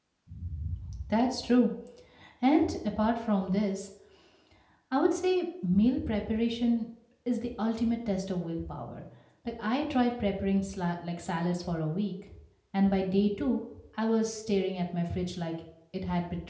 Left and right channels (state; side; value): identical; both; correlation 1.00